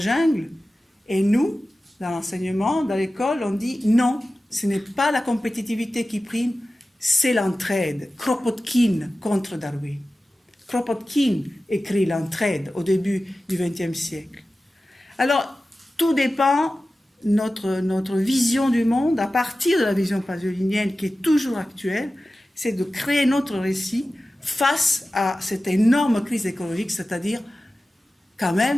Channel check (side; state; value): both; normal; correlation 0.95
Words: Et nous, dans l'enseignement, dans l'école, on dit non, ce n'est pas la compétitivité qui prime, c'est l'entraide. Kropotkin contre Darwin. Kropotkin écrit l'entraide au début du XXe siècle. Alors, tout dépend notre vision du monde à partir de la vision pasolinienne qui est toujours actuelle, c'est de créer notre récit face à cette énorme crise écologique, c'est-à-dire quand